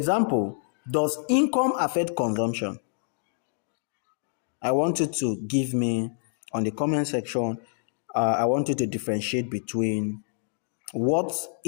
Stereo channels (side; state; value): right; silent; digital silence